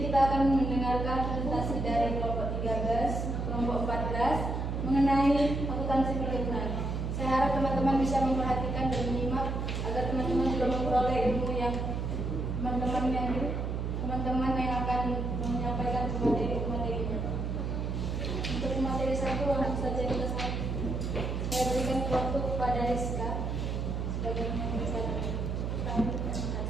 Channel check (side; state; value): right; noise; hum, 2 dB below the sound